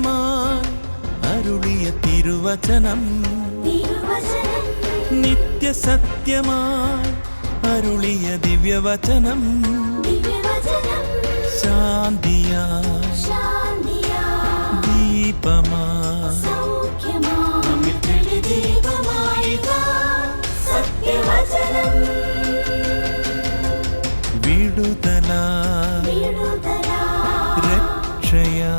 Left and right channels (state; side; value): inverted; both; correlation -1.00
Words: അരുളിയ തിരുവചനം, നിത്യസത്യമായി അരുളിയ ദിവ്യവചനം, ശാന്തിയായി ദീപമായി വിടുതലായി